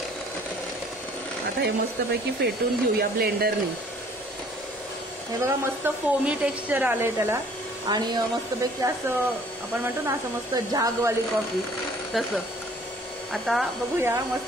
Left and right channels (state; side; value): normal; both; correlation 0.56